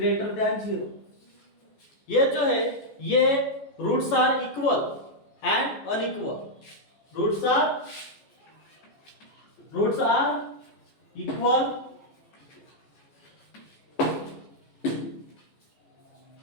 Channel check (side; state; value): right; late; 14 ms